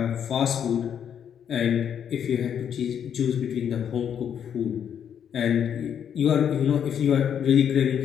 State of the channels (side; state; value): right; quieter; 8.6 dB